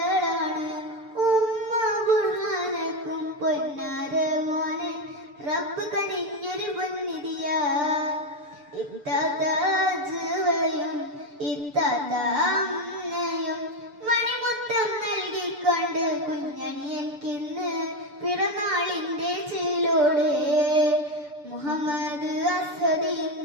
ഉമ്മ ബുർഹാനക്കും പൊന്നാര മോനെ റബ്ബ് കനിഞ്ഞൊരു പൊന്നിധിയാ ഇത്താതാജുവയും ഇത്താതാമ്മയും മണിമുത്തം നൽകിക്കൊണ്ട് കുഞ്ഞനിയൻകിന്ന് പിറന്നാളിന്റെ ചിലോട് മുഹമ്മദ് അസ്ഹദ്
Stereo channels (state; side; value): late; left; 6.8 ms